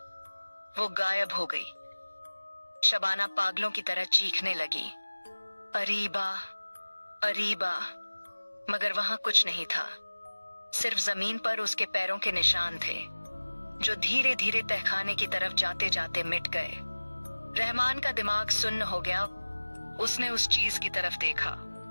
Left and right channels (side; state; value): both; inverted; correlation -1.00